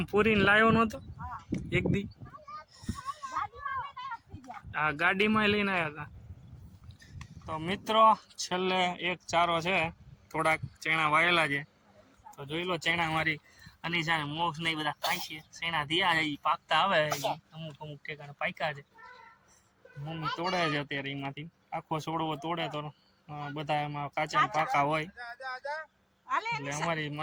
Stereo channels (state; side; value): identical; both; correlation 1.00